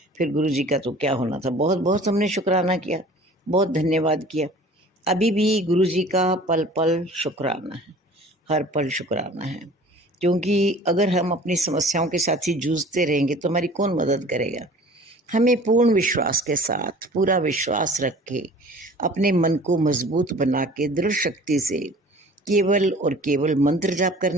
फिर गुरु जी का तो क्या होना था, बहुत बहुत हमने शुक्राना किया, बहुत धन्यवाद किया। अभी भी गुरु जी का पल पल शुक्राना है, हर पल शुक्राना है, क्योंकि अगर हम अपनी समस्याओं के साथ ही जूझते रहेंगे तो हमारी कौन मदद करेगा। हमें पूर्ण विश्वास के साथ, पूरा विश्वास रख के, अपने मन को मजबूत बना के दृढ़ शक्ति से केवल और केवल मंत्र जाप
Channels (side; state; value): both; normal; correlation 0.46